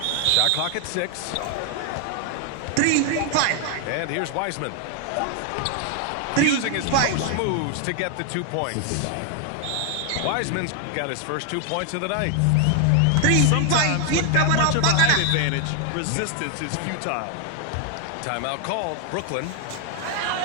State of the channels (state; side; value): different; both; correlation 0.00